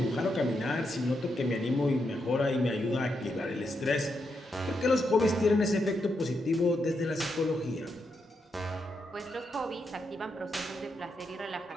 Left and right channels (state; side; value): normal; both; correlation 0.82